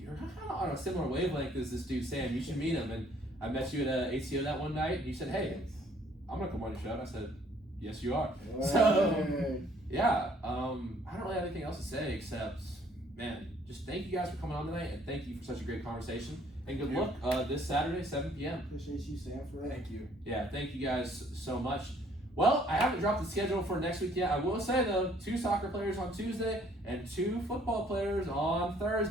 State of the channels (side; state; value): both; normal; correlation 0.61